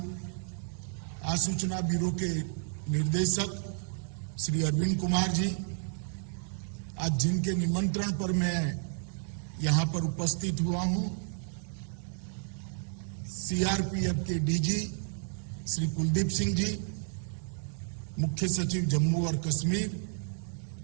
आसूचना ब्यूरो के निर्देशक श्री अरविंद कुमार जी, आज जिनके निमंत्रण पर मैं यहाँ पर उपस्थित हुआ हूँ, सीआरपीएफ के डीजी श्री कुलदीप सिंह जी, मुख्य सचिव जम्मू और कश्मीर,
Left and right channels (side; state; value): left; silent; 57 dB below the other